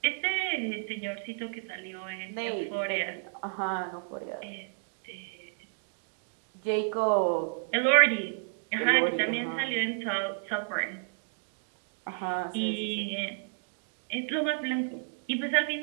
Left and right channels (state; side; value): silent; left; digital silence